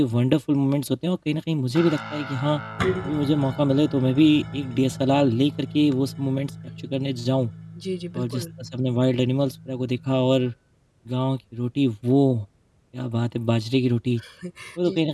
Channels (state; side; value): identical; both; correlation 1.00